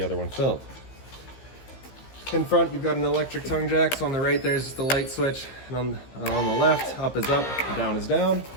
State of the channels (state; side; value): late; right; 15 ms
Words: other one filled. In front, you've got an electric tongue jack. So on the right, there's just the light switch. And on the left, up is up, down is down.